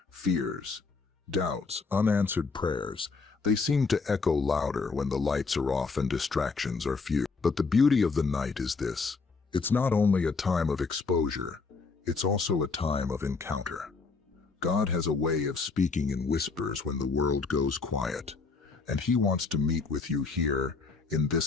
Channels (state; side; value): quieter; right; 4.5 dB